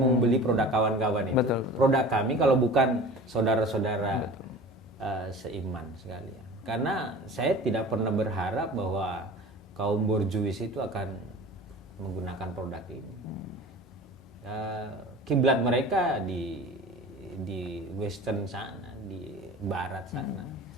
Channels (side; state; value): both; normal; correlation 0.39